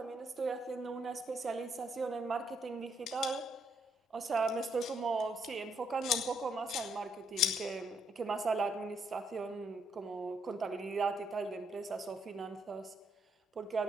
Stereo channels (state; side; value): normal; both; correlation 0.74